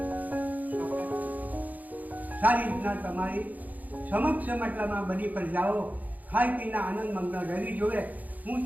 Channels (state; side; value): late; left; 0.080 ms